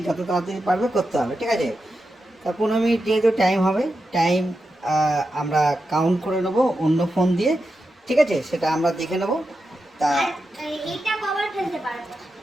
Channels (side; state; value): both; normal; correlation 0.89